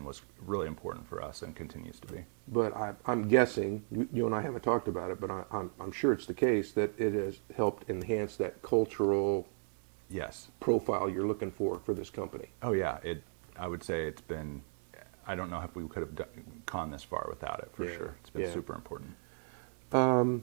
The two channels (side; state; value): left; silent; digital silence